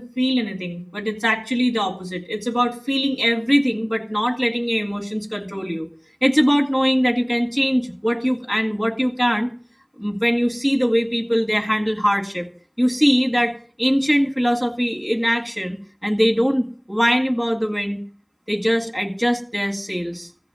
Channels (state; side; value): identical; both; correlation 1.00